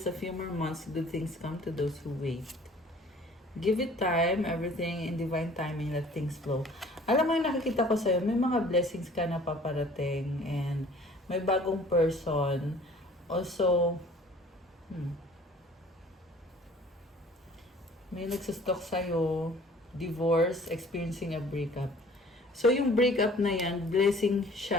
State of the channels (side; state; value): both; normal; correlation 0.51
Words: a few more months, good things come to those who wait. Give it time, everything in divine timing, let things flow. Alam mo yung nakikita ko sa'yo, may mga blessings ka na paparating and may bagong person. Also, may nagsastalk sa'yo, divorce, experiencing a breakup. So, yung breakup na yan, blessing